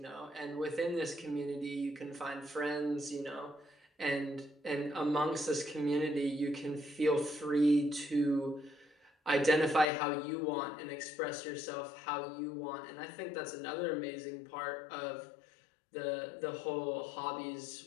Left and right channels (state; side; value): drops out; right; at 9.9 s